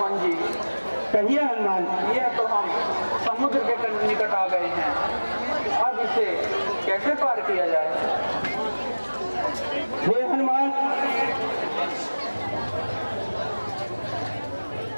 जी, कहिए हनुमान। ये तो हम समुद्र के निकट आ गए हैं, अब इसे कैसे पार किया जाए? हे हनुमान,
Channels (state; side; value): inverted; both; correlation -1.00